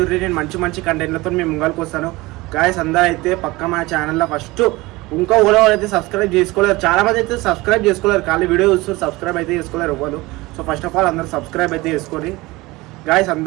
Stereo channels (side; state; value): left; quieter; 21.2 dB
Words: నేను మంచి కంటెంట్లతో మేము ముంగల్కి వస్తాను. గైస్ అందరూ అయితే పక్క మా ఛానల్లో ఫస్ట్ ఇంకా ఓలో అయితే సబ్స్క్రైబ్ చేసుకోలేరు. చాలామంది అయితే సబ్స్క్రైబ్ చేసుకోలేరు, ఖాళీ వీడియో చూస్తారు, సబ్స్క్రైబ్ అయితే చేసుకోలేరు ఎవరు. సో ఫస్ట్ ఆఫ్ ఆల్ అందరూ సబ్స్క్రైబ్ అయితే చేసుకోండి. గైస్